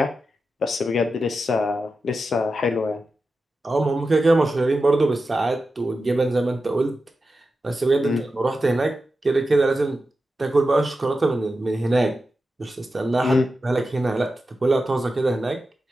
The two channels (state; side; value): normal; both; correlation 0.91